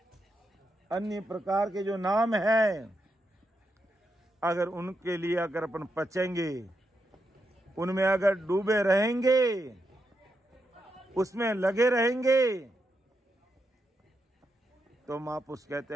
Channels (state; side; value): normal; both; correlation 0.84